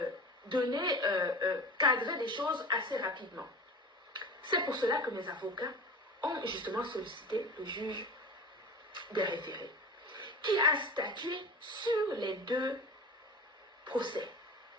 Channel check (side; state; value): both; normal; correlation 0.34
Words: cadrer les choses assez rapidement. C'est pour cela que mes avocats ont justement sollicité le juge des référés, qui a statué sur les 2 procès.